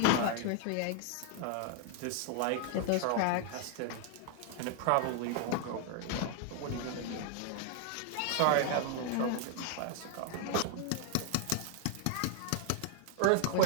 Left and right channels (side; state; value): both; different; correlation 0.00